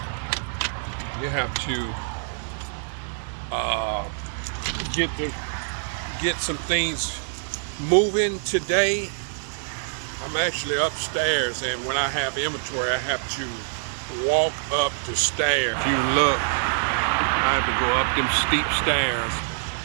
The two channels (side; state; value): left; silent; 62 dB below the other